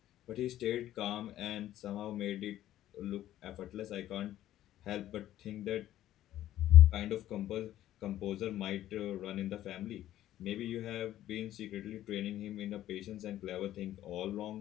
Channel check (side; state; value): right; quieter; 13.1 dB